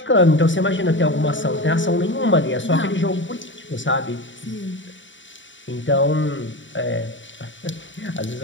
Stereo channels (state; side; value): late; right; 0.55 ms